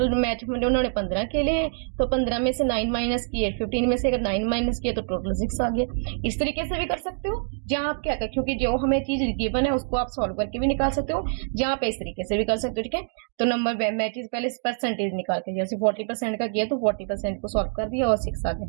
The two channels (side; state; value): left; silent; digital silence